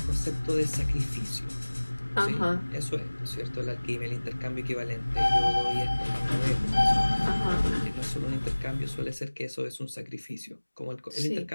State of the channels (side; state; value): both; inverted; correlation -1.00